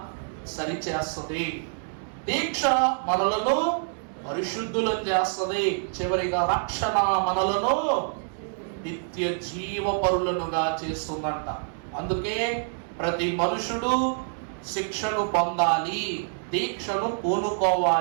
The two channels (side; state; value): left; silent; digital silence